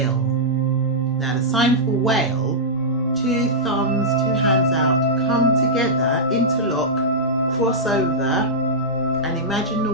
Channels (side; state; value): both; normal; correlation -0.11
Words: Now the sign for whale, 2 thumbs, 2 hands out, come together, interlock, cross over, and imagine the